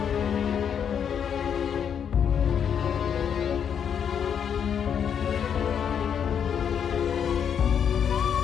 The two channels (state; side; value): quieter; right; 8.0 dB